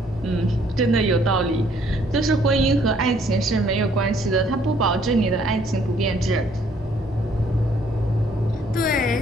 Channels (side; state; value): both; normal; correlation 0.64